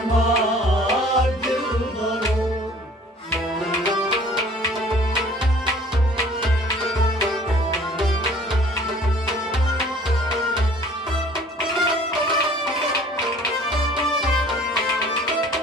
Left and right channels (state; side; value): normal; both; correlation 0.52